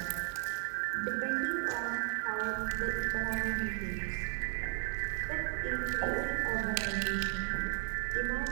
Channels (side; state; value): left; silent; 55 dB below the other